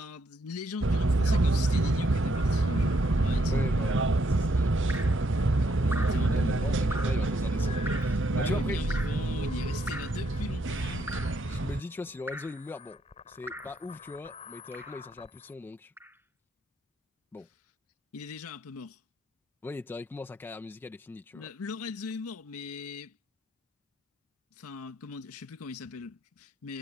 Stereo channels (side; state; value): both; normal; correlation 0.74